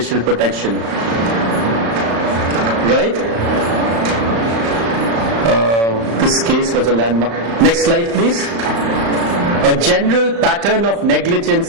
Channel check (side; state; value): left; late; 35 ms